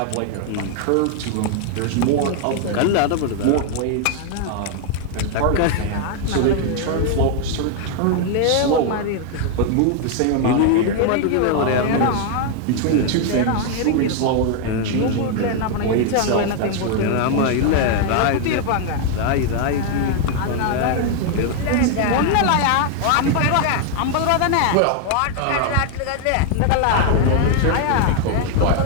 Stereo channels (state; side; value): different; both; correlation 0.00